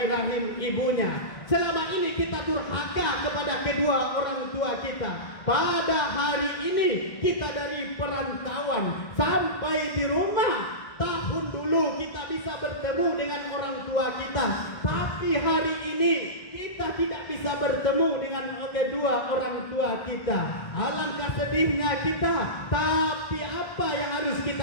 rahim ibunya. Selama ini kita durhaka kepada kedua orang tua kita. Pada hari ini kita dari perantauan sampai di rumah. Tahun dulu kita bisa bertemu dengan orang tua kita, tapi hari ini kita tidak bisa bertemu dengan kedua orang tua kita. Alangkah sedihnya kita. Tapi apa yang harus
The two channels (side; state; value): right; late; 2.1 ms